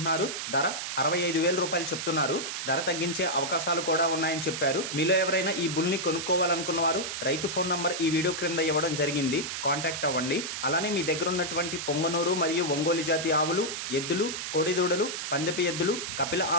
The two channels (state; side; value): noise; right; hiss, 4 dB below the sound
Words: ధర 65,000 రూపాయలు చెప్తున్నారు. ధర తగ్గించే అవకాశాలు కూడా ఉన్నాయని చెప్పారు. మీలో ఎవరైనా ఈ బుల్ని కొనుక్కోవాలనుకున్న వారు రైతు ఫోన్ నంబర్ ఈ వీడియో క్రింద ఇవ్వడం జరిగింది. కాంటాక్ట్ అవ్వండి. అలానే మీ దగ్గర ఉన్నటువంటి పొంగనూరు మరియు ఒంగోలు జాతి ఆవులు, ఎద్దులు, కోడిదూడలు, పందెపు ఎద్దులు, కపిల